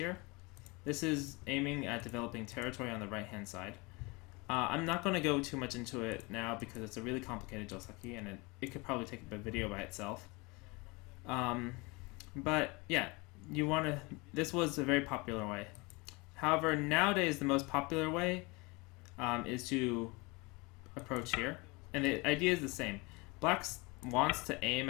This is aiming at developing territory on the right-hand side. I'm not going to go too much into it now because it's a really complicated joseki and it could probably take a video by itself. But yeah, this was a very popular way. However, nowadays the most popular way is to approach here. And the idea is the same. Black wants to aim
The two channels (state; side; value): quieter; right; 26.3 dB